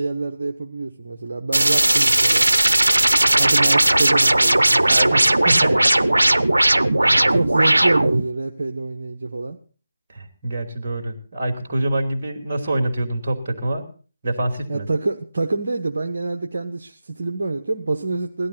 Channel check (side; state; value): both; inverted; correlation -0.97